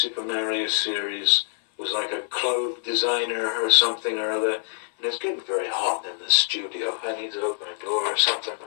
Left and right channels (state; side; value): silent; right; 62 dB below the other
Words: Mario series was like a clothes designer or something or other, and it's getting very hot in the studio. I need to open a door or something.